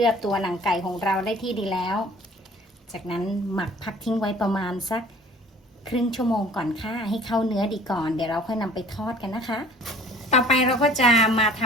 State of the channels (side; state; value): both; normal; correlation 0.50